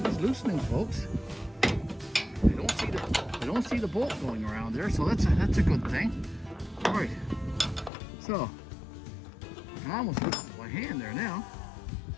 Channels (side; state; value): right; drops out; at 7.9 s